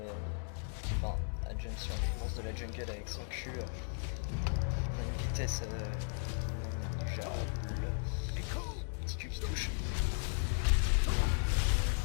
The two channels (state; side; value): silent; right; 54 dB below the other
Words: enfin à jump sur les monstres de la jungle avec son cul. On a une vitesse déjà petit cul qui touche.